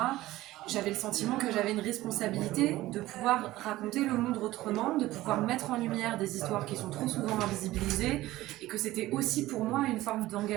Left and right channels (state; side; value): quieter; left; 16.8 dB